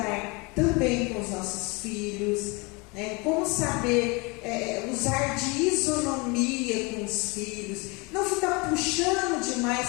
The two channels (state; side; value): quieter; right; 28.1 dB